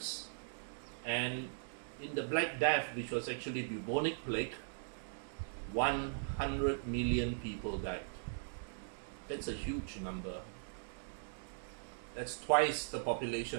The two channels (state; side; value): silent; left; digital silence